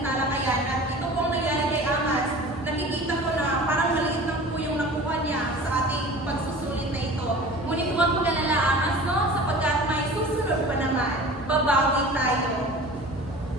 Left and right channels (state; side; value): normal; both; correlation 0.40